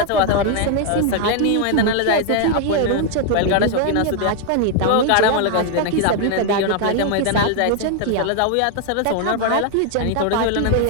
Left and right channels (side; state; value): both; different; correlation 0.00